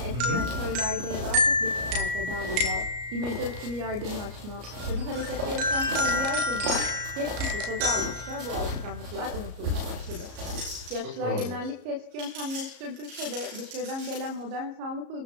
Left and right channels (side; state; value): left; late; 34 ms